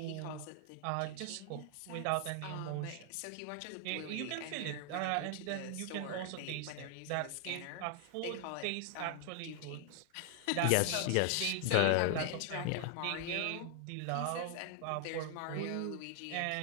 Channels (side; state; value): both; different; correlation 0.00